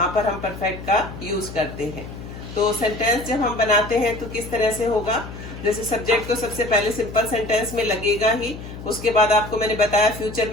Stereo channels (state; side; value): noise; left; hum, 12 dB below the sound